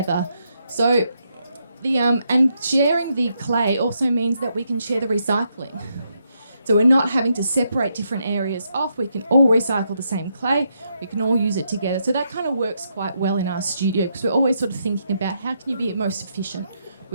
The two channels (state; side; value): inverted; both; correlation -0.79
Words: So and sharing the clay also means that we can share the recycling. So we're not having to separate different areas off. We can all recycle the same clay. We can all use it together. So that kind of works quite well in our studio because we're always sort of thinking about how can you be most efficient